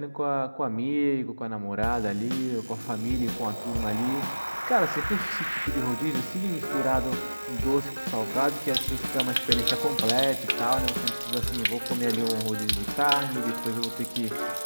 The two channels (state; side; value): inverted; both; correlation -1.00